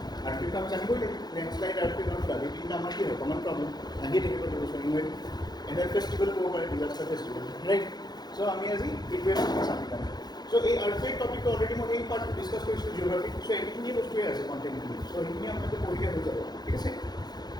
earthquake আমি জানিবই লাগিব লেণ্ডশ্লাইড আৰ্থকুৱেক আৰু ফ্লাড এই তিনিটা আমাৰ কি হয় কমন প্ৰব্লেম আহি থাকিব ডিছকাউণ্ট এনুৱেল ফেষ্টিভেল ক'ব পাৰে ডিজাস্টাৰ ফেষ্টিভেল ৰাইট সো আমি আজি হিট ৱেভছ চাবি কাৰণে সো এই আৰ্থকুৱেক টপিকটো অলৰেডি মই এই পাৰ্ট ডিছকাছ কৰিছোঁ জিঅ'গ্ৰাফি সো এইখিনি বস্তুৱে আছে কণ্টেণ্টখিনি সো সেইখিনি আপোনালোকে পঢ়িলে হৈ যাব ঠিক আছে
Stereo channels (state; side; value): late; right; 0.20 ms